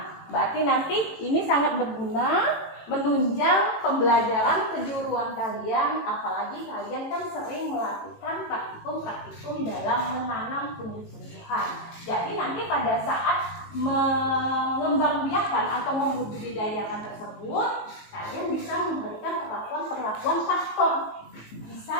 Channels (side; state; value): right; late; 18 ms